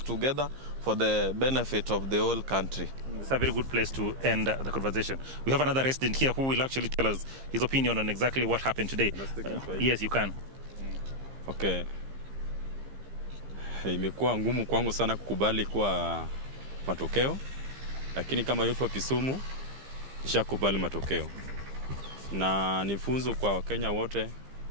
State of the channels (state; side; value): late; left; 15 ms